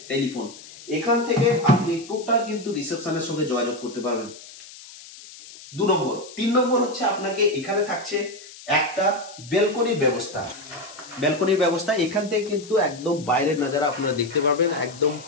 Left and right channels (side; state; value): left; noise; hiss, 18 dB below the sound